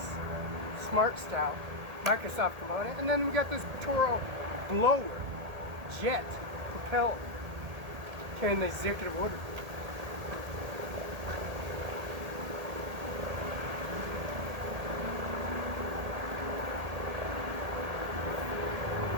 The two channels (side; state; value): left; late; 1.8 ms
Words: Smart Style Microsoft component, and then we got this Toro blower jet propelled carrying the executive order.